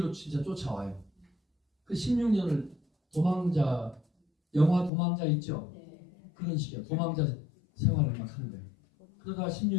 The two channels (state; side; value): drops out; right; at 4.9 s